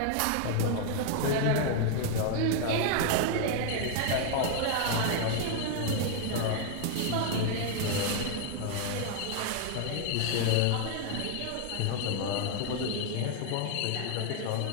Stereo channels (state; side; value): different; both; correlation 0.00